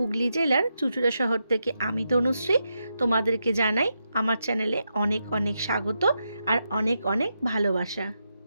জেলার চুঁচুড়া শহর থেকে আমি তনুশ্রী তোমাদেরকে জানাই আমার চ্যানেলে অনেক অনেক স্বাগত আর অনেক অনেক ভালোবাসা।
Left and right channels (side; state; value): both; inverted; correlation -0.85